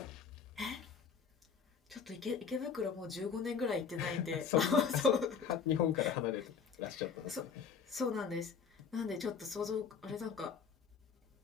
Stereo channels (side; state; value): right; quieter; 6.4 dB